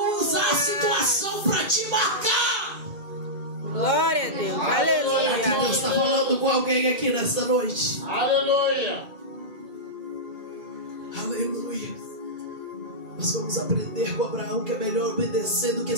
usar a situação para te marcar. Glória a Deus. Será que Deus está Aleluia. falando com alguém aqui nessa noite? Aleluia. Aleluia. Nós vamos aprender com Abraão que é melhor obedecer do que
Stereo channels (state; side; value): late; left; 2.1 ms